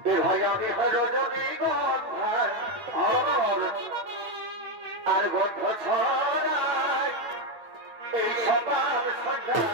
আর গন্ধ ছড়ায় এই সবার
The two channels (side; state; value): left; late; 9.2 ms